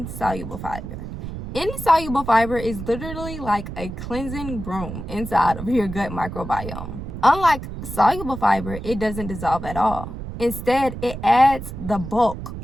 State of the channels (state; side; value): noise; right; rumble, 9 dB below the sound